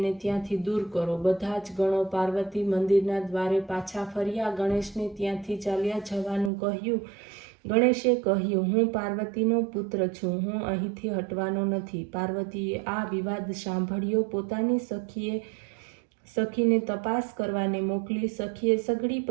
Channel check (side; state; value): left; drops out; at 6.5 s